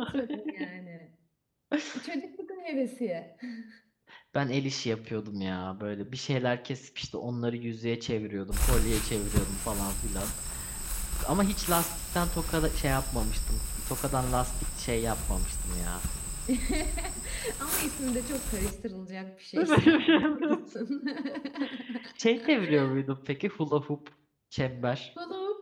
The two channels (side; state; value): both; identical; correlation 1.00